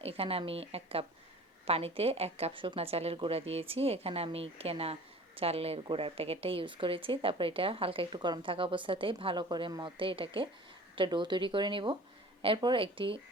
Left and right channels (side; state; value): both; normal; correlation 0.44